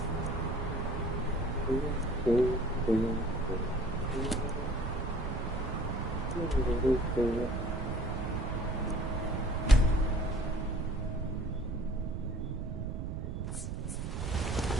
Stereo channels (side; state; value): right; noise; rumble, 4 dB below the sound